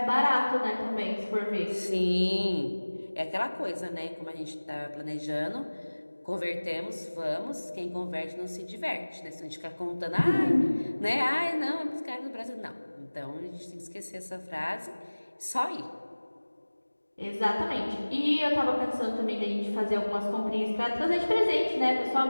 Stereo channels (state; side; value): inverted; both; correlation -1.00